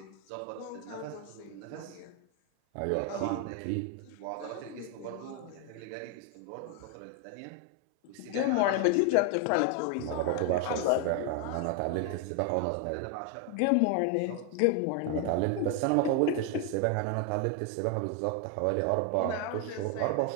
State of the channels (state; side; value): different; both; correlation 0.01